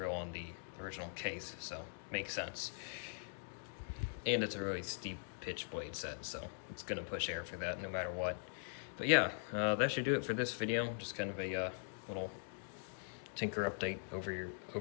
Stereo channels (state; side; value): silent; right; digital silence